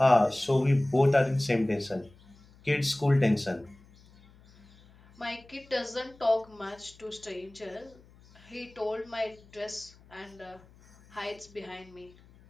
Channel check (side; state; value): left; noise; hum, 26 dB below the sound